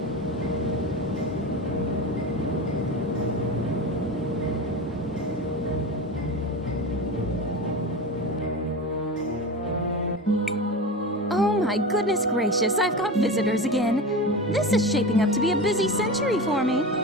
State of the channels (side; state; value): both; normal; correlation 0.26